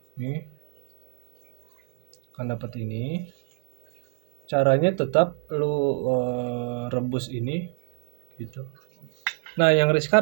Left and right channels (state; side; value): silent; left; 60 dB below the other